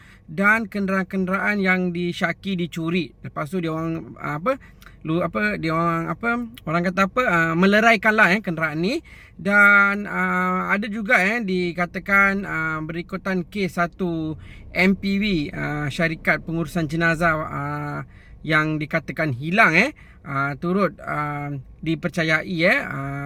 dan kenderaan-kenderaan yang disyaki dicuri. Lepas tu dia orang orang kata meleraikanlah kenderaan ni. Dan ada juga dikatakan berikutan kes satu MPV syarikat pengurusan jenazah yang dikatakan hilang turut dipercayai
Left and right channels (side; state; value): both; identical; correlation 1.00